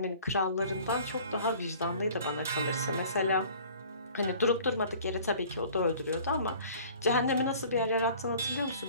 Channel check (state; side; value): inverted; both; correlation -0.49